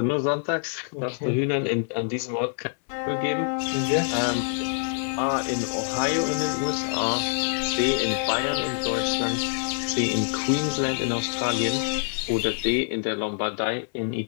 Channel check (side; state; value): right; silent; digital silence